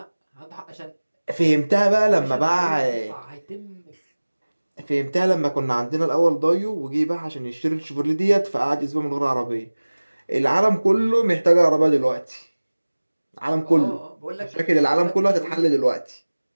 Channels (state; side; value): inverted; both; correlation -1.00